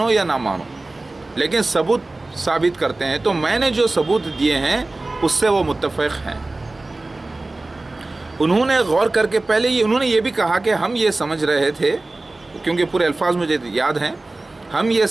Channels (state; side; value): quieter; left; 3.0 dB